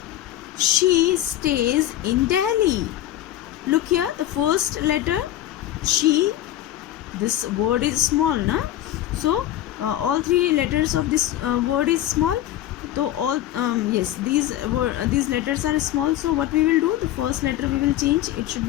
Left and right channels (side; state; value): right; quieter; 13.2 dB